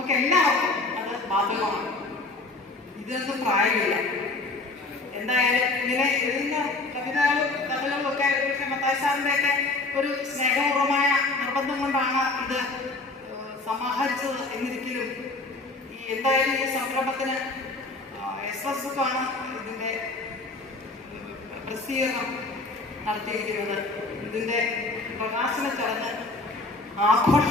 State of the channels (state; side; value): quieter; right; 3.3 dB